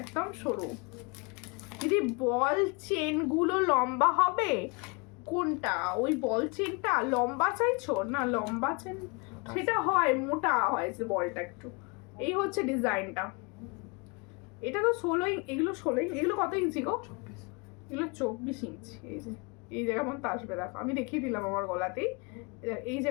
একদম সরু। দিদি বল চেন গুলো লম্বা হবে কোনটা? ওই বল চেনটা লম্বা চাইছো না? লম্বা চেন সেটা হয়, মোটা হয় যে বলটা একটু। এই হচ্ছে ডিজাইনটা, এটা তো 16, এগুলো 16, এগুলো কত ইঞ্চি গো? এগুলো 24 ইঞ্চি। এই যে এই জায়গা পর্যন্ত আসবে, দেখো আমি দেখিয়ে দিলাম আমার গলাতেই, এই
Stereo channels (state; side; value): quieter; right; 30.5 dB